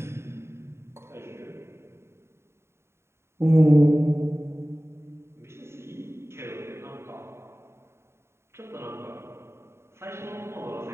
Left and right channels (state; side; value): late; left; 0.13 ms